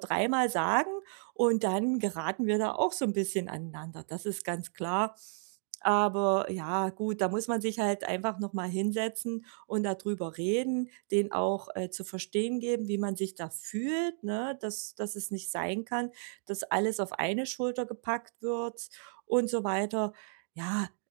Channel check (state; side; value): silent; left; digital silence